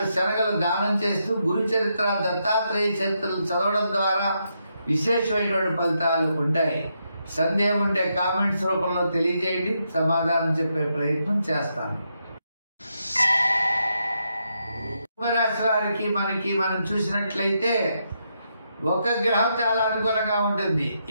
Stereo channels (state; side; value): inverted; both; correlation -0.81